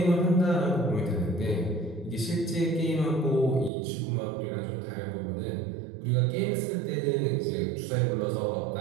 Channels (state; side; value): drops out; left; at 3.7 s